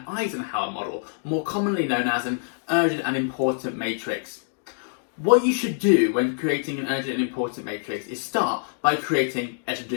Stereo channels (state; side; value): silent; right; digital silence